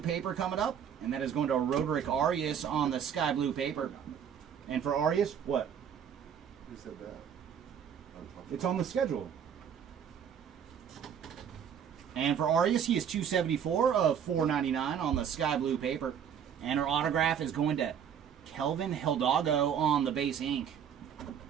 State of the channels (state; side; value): quieter; left; 8.3 dB